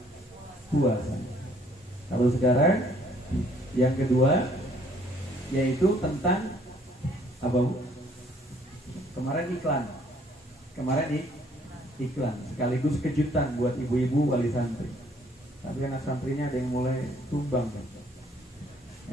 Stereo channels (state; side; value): normal; both; correlation 0.62